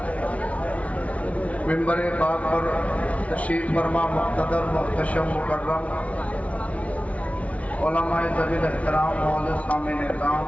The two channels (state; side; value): late; right; 0.065 ms